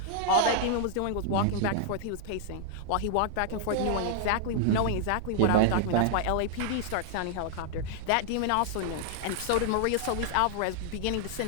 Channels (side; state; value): both; different; correlation -0.01